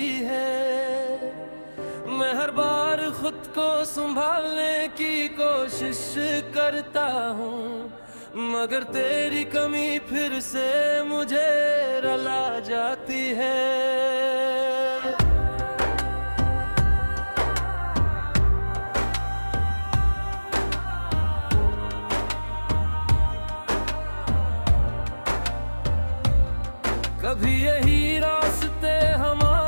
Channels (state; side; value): inverted; both; correlation -1.00